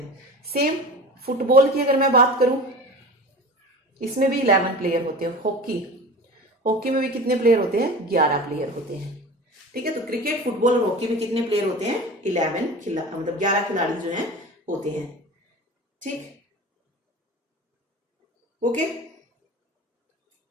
सेम फुटबॉल की अगर मैं बात करूं, इसमें भी 11 प्लेयर होते हैं। हॉकी में भी कितने प्लेयर होते हैं? 11 प्लेयर होते हैं, ठीक है। तो क्रिकेट, फुटबॉल और हॉकी में कितने प्लेयर होते हैं? 11 खिलाड़ी जो हैं होते हैं, ठीक। ओके,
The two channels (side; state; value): both; normal; correlation 0.35